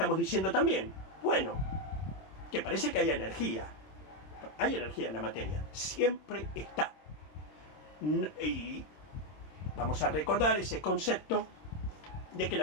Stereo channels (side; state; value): right; late; 26 ms